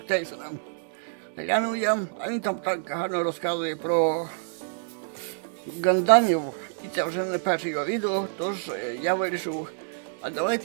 Тейсона. Глянув я, а він там так гарно розказує про гандамів, і це вже не перше його відео, тож я вирішив, а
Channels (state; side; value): silent; left; digital silence